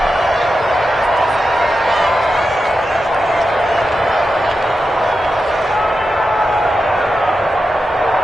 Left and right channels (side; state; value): both; normal; correlation 0.90